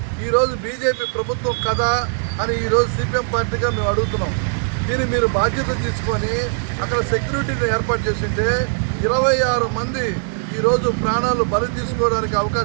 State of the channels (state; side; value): silent; left; digital silence